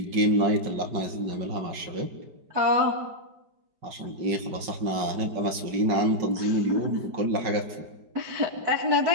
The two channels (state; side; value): late; left; 5.4 ms